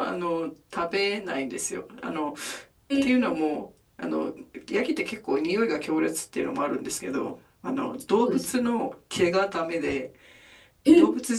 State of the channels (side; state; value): both; identical; correlation 1.00